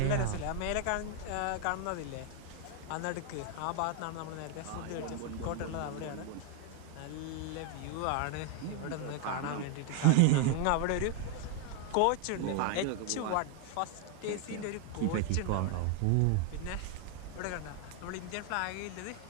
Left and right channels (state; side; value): different; both; correlation 0.00